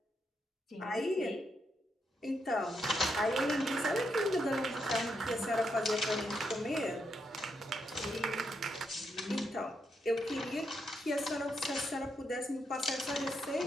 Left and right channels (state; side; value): normal; both; correlation 0.80